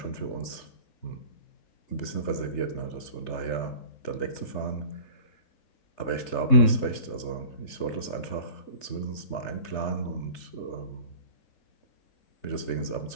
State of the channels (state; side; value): late; right; 3.3 ms